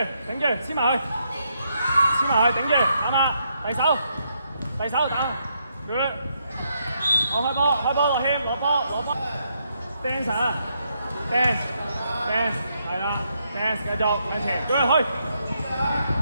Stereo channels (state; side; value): inverted; both; correlation -0.77